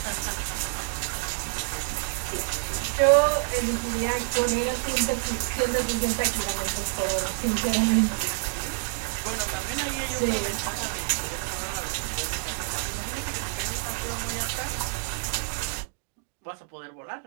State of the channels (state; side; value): silent; left; digital silence